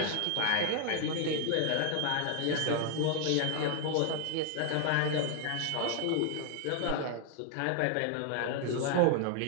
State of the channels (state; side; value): different; both; correlation 0.00